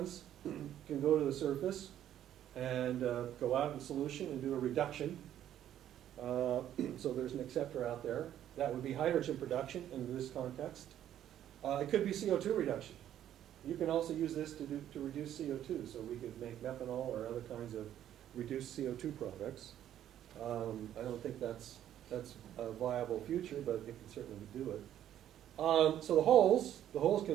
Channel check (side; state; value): left; quieter; 11.2 dB